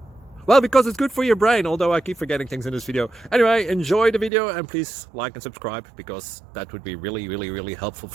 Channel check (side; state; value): left; drops out; at 4.3 s